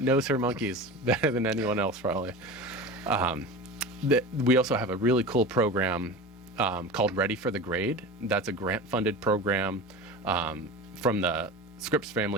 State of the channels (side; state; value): both; normal; correlation 0.31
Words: monkeys better than anyone else, probably. We also have a really cool program called Ready for the Grade. That's a grant-funded program from the Scripps